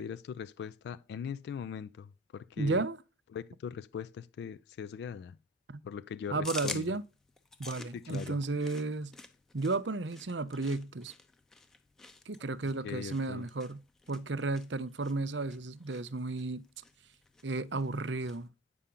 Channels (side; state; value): both; normal; correlation 0.32